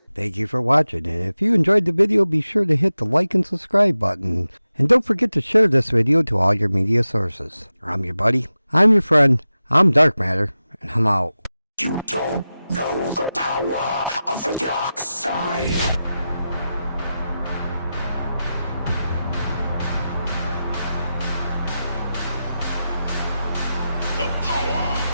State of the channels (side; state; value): both; inverted; correlation -0.93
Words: Thank you for watching, and if you enjoyed the video, be sure to hit the like and subscribe button. And don't forget to share this video to all your media sources. I'm your buddy, I'm your friend, I'm Dark Matter, and I'm out. You don't know the power of the dark side.